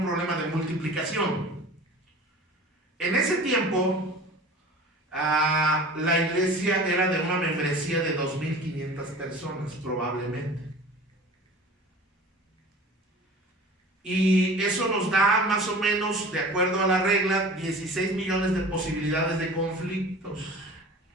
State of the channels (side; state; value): both; normal; correlation 0.40